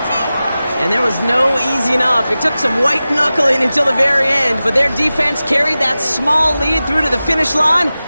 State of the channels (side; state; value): both; inverted; correlation -0.95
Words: And there was no easing up. It took some white knuckling until the very end, but their defense carried that small lead through to the finish line